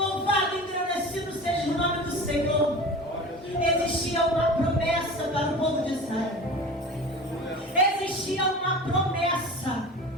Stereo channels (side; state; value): both; normal; correlation 0.35